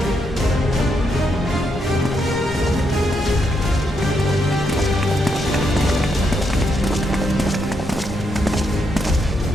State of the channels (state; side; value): normal; both; correlation 0.79